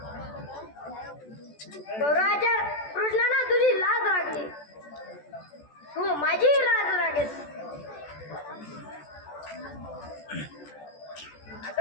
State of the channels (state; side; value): late; right; 14 ms